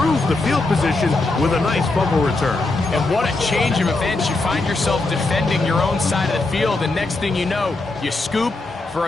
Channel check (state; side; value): quieter; right; 3.2 dB